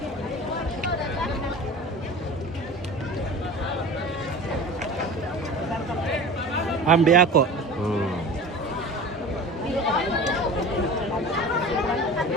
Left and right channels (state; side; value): normal; both; correlation 0.36